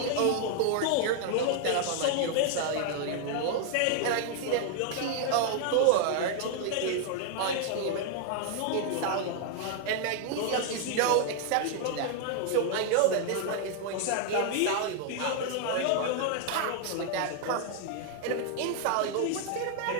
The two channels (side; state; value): both; different; correlation 0.00